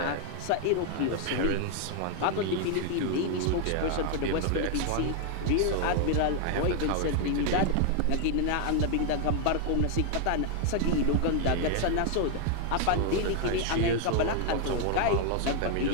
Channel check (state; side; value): different; both; correlation 0.00